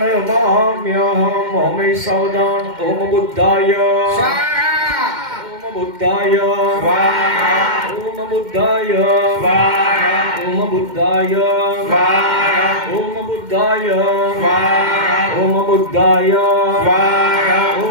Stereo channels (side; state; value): left; late; 2.1 ms